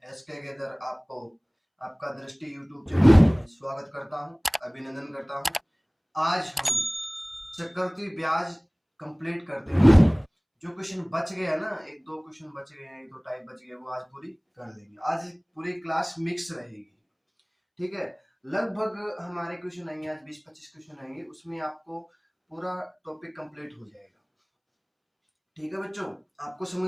एसके गेदर आपको आपका दृष्टि यूट्यूब चैनल में स्वागत करता हूं, अभिनंदन करता हूं। आज हम चक्रवृद्धि ब्याज कंप्लीट करते हैं। जो क्वेश्चन बच गया ना, एक दो क्वेश्चन बच गए हैं, एक दो टाइप बच गए, वो आज पूरी कर लेंगे। आज पूरी क्लास मिक्स रहेगी, ठीक है। लगभग हमारे क्वेश्चन आएंगे आज 20-25 क्वेश्चन आएंगे, उसमें आपको पूरा टॉपिक कंप्लीट हो जाएगा। ठीक है बच्चों, आपको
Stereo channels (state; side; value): identical; both; correlation 1.00